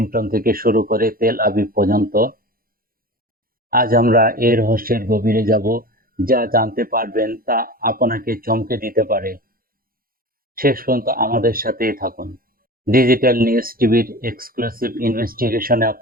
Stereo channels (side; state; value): left; late; 0.42 ms